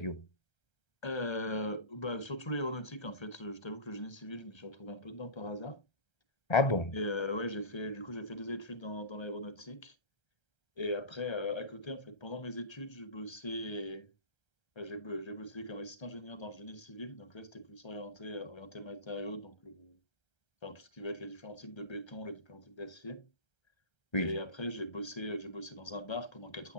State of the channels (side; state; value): right; late; 1.3 ms